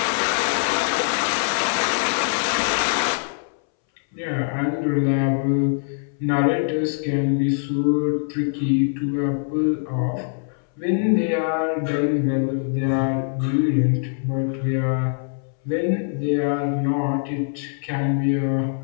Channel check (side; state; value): right; silent; 62 dB below the other